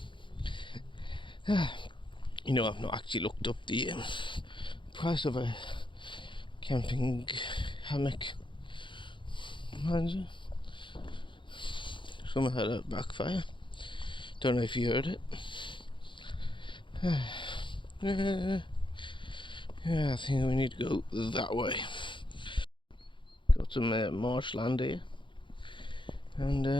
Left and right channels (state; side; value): late; right; 0.23 ms